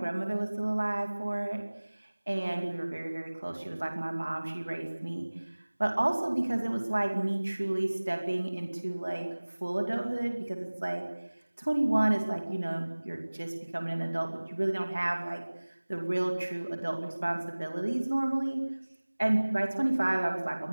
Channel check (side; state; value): both; inverted; correlation -1.00